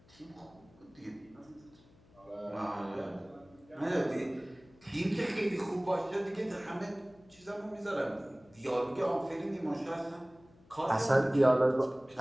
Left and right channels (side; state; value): left; noise; hum, 27 dB below the sound